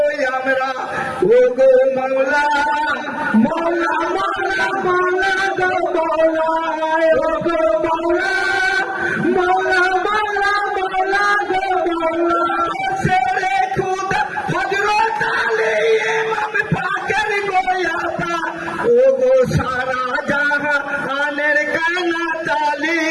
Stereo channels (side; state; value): both; identical; correlation 1.00